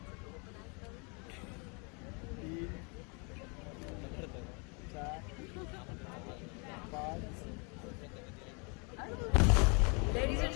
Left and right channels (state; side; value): quieter; right; 33.2 dB